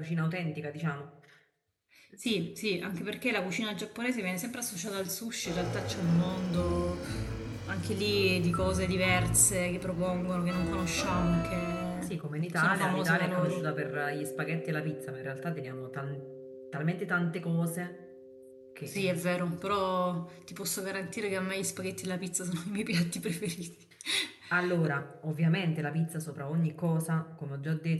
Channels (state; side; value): identical; both; correlation 1.00